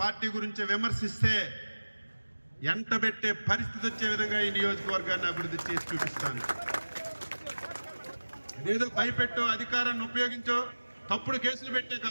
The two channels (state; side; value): inverted; both; correlation -1.00